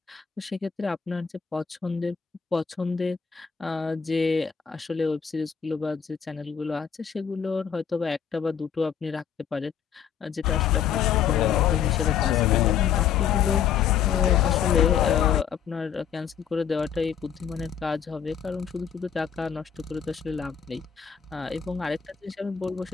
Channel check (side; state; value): right; quieter; 8.0 dB